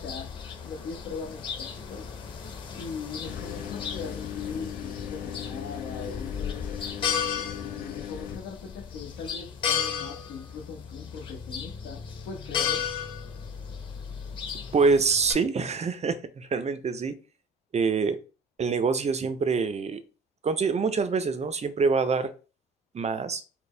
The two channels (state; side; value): normal; both; correlation 0.39